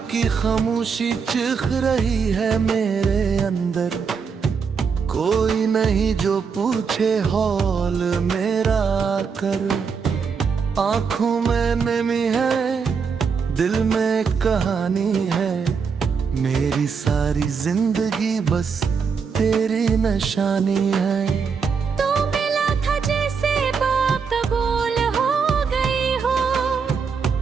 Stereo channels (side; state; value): left; quieter; 5.8 dB